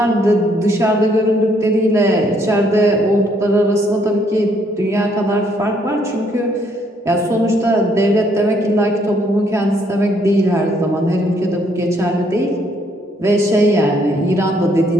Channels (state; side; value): normal; both; correlation 0.68